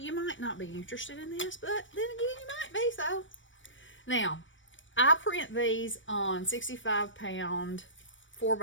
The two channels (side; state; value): right; late; 0.56 ms